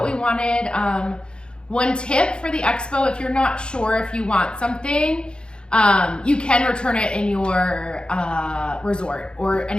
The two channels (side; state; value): right; late; 0.052 ms